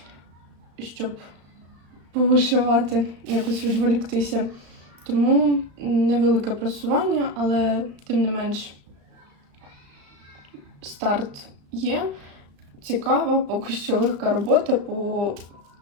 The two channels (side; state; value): left; late; 35 ms